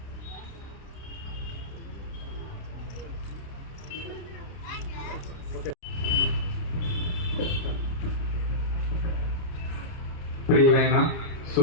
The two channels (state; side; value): late; right; 29 ms